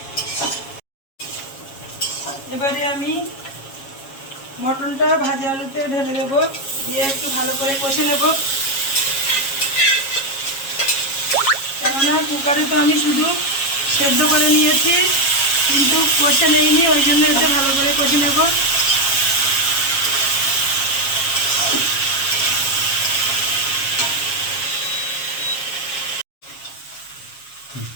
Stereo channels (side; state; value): right; late; 7.3 ms